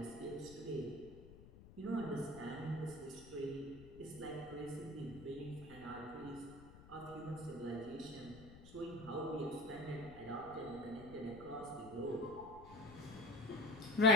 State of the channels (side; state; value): left; noise; rumble, 17 dB below the sound